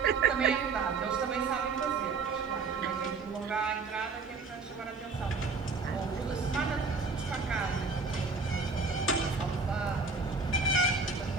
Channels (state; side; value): quieter; left; 4.4 dB